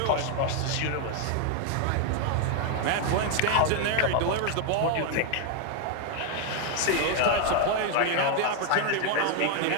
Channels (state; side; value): different; both; correlation 0.01